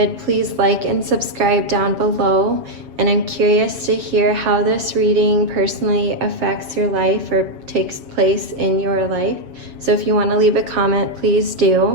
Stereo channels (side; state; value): left; late; 7.3 ms